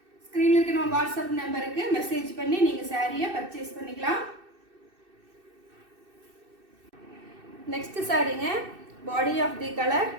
ஸ்க்ரீனில் இருக்க நம்ம வாட்ஸ்அப் நம்பருக்கு மெசேஜ் பண்ணி நீங்கள் சாரியை பர்ச்சேஸ் பண்ணிக்கலாம். நெக்ஸ்ட் சாரீங்க body of the colour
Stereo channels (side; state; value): left; late; 2.6 ms